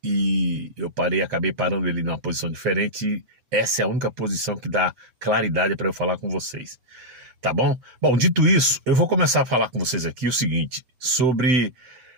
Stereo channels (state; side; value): late; left; 7.9 ms